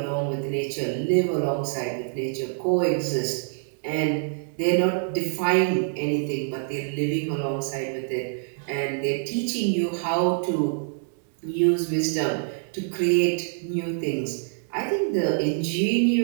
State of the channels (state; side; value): silent; left; digital silence